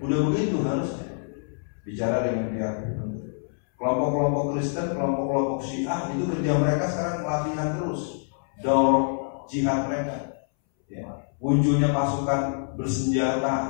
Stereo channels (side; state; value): right; silent; 61 dB below the other